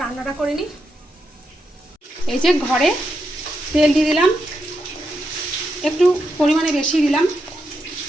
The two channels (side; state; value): both; normal; correlation 0.84